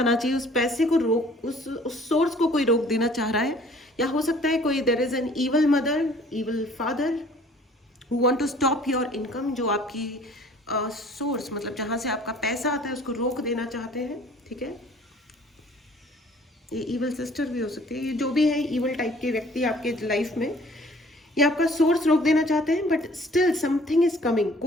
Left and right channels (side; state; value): both; normal; correlation 0.53